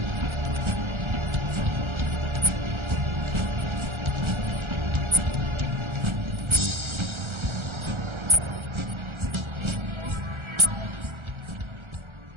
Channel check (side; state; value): left; late; 1.4 ms